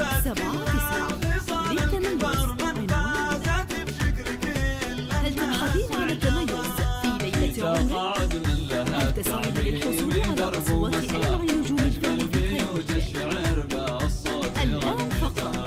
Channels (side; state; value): both; identical; correlation 1.00